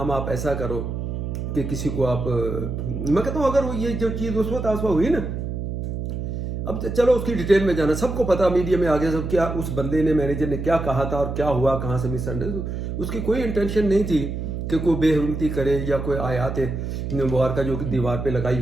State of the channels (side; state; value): right; noise; hum, 4 dB below the sound